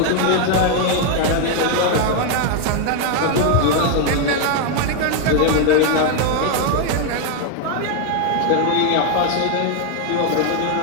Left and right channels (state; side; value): different; both; correlation 0.01